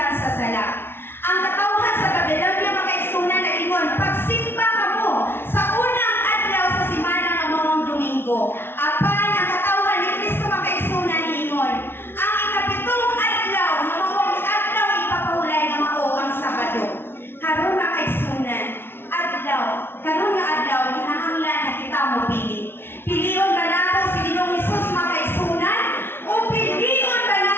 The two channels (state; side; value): late; right; 0.11 ms